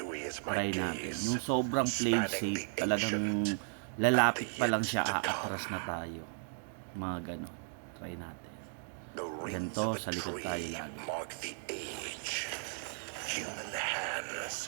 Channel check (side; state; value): left; silent; 54 dB below the other